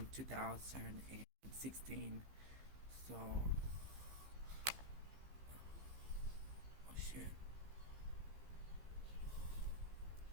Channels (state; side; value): late; left; 15 ms